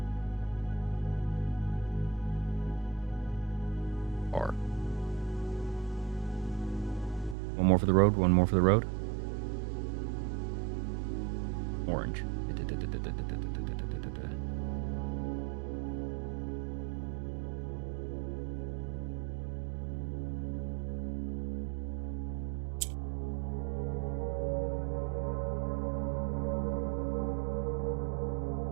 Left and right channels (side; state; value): left; drops out; at 7.4 s